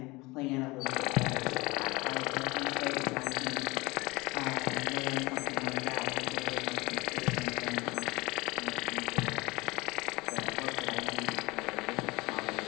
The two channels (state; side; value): quieter; right; 23.2 dB